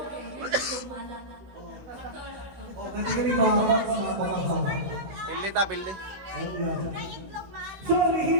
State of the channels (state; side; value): late; left; 16 ms